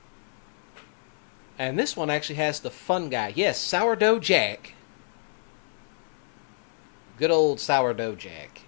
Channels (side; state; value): right; silent; 59 dB below the other